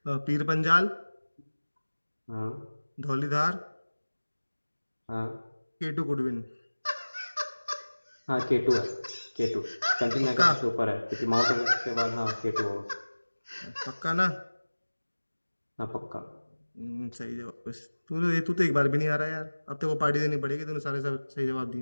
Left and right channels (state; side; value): inverted; both; correlation -1.00